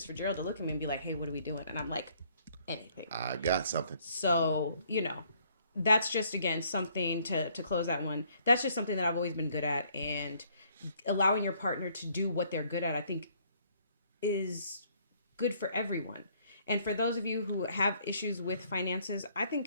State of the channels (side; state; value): both; inverted; correlation -0.64